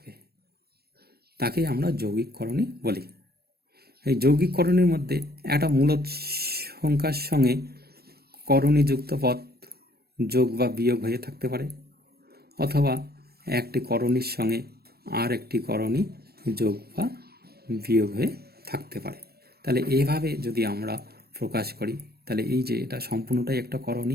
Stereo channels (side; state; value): left; late; 0.46 ms